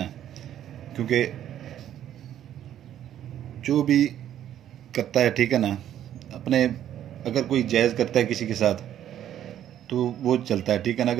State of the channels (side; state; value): left; quieter; 11.0 dB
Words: क्योंकि जो भी करता है, ठीक है ना, अपने अगर कोई जायज़ करता है किसी के साथ तो वो चलता है, ठीक है ना।